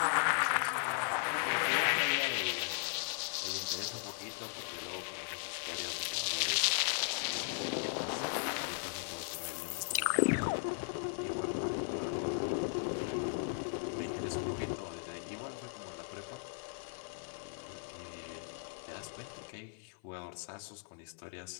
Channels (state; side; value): silent; right; 53 dB below the other